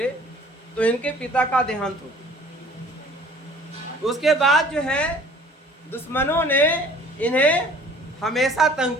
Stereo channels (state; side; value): normal; both; correlation 0.51